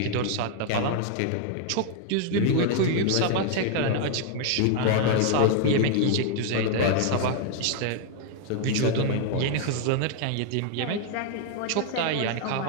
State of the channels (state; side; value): different; both; correlation 0.00